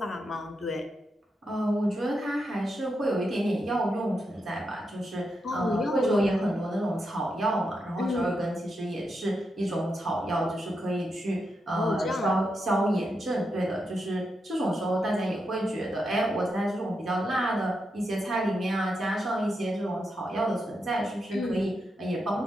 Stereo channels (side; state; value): both; normal; correlation 0.85